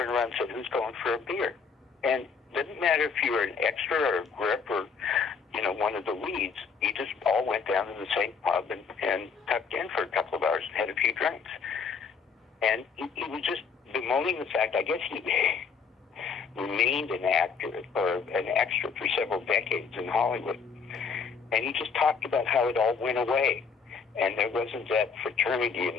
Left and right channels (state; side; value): quieter; right; 5.6 dB